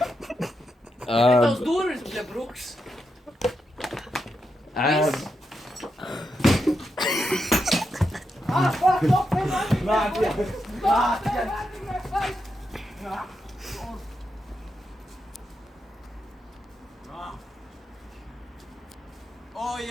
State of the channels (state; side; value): normal; both; correlation 0.85